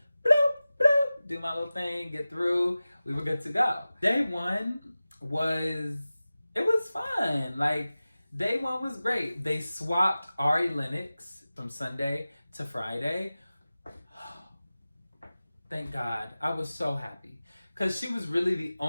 bloop, bloop, do my little thing, get through. We were good to go. Day 1 was fun. Day 1 was great. They swapped Ari Lennox from Sunday to Friday. Thank God. I was so happy. Because she was really the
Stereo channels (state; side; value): inverted; both; correlation -0.96